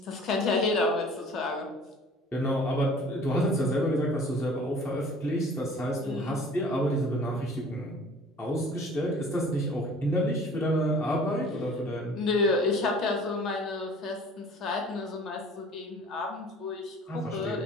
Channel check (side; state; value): both; normal; correlation 0.48